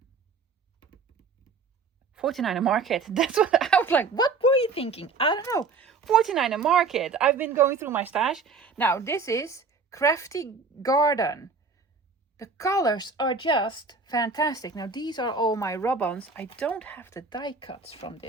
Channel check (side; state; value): left; quieter; 4.5 dB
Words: Market. That's what I was like. What were you thinking? I don't know. 49er Market. I've been going through my stash. Now, this is Crafty Garden. The colors are just fantastic. Now, these are all my rub-ons. I don't have the die cuts from